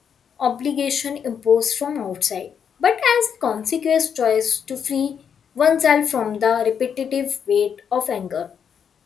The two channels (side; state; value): right; quieter; 7.5 dB